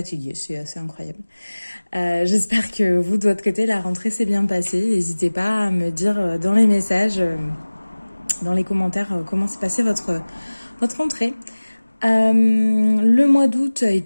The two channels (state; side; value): inverted; both; correlation -1.00